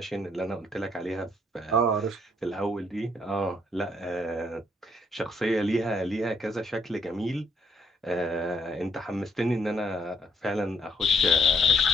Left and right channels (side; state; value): both; normal; correlation 0.70